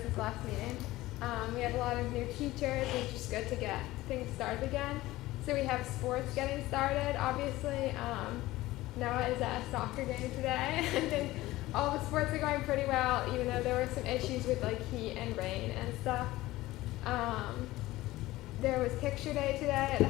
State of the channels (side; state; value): right; quieter; 17.6 dB